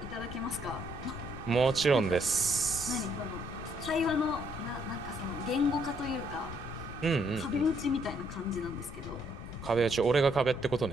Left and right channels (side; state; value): left; noise; rumble, 11 dB below the sound